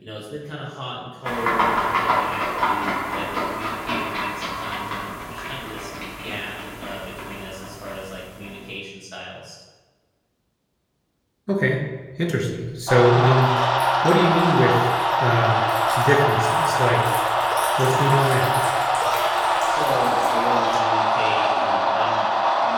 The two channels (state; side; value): identical; both; correlation 1.00